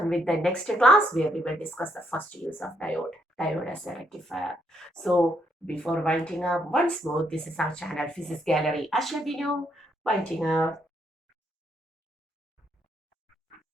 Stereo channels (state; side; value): normal; both; correlation 0.74